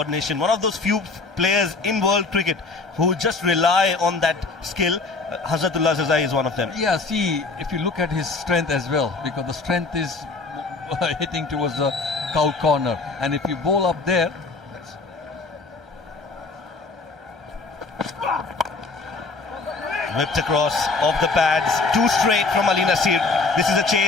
One of those few players in world cricket who just rely on that skill. Hazratullah Zazai is one of them. Yeah, see, if you look at his strength as well, because the strength is hitting towards the cow corner, and if you bowl up there, whipped across off the pads, 2 straight from Ali Nasir. This is a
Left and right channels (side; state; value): right; quieter; 3.8 dB